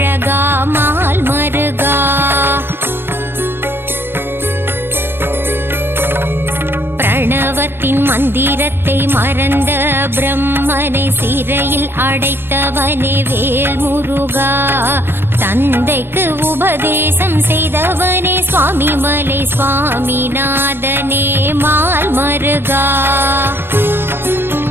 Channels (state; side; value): late; left; 0.11 ms